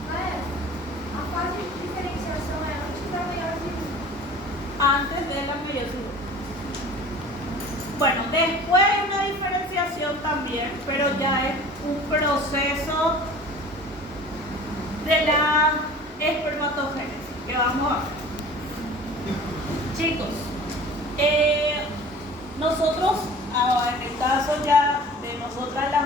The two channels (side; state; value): both; normal; correlation 0.43